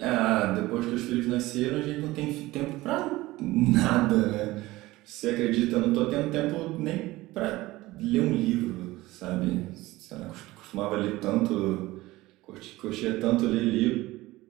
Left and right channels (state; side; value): quieter; left; 18.7 dB